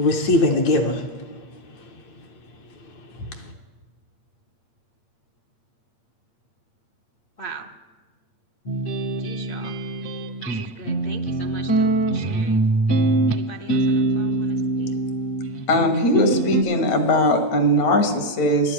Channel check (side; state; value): right; late; 8.7 ms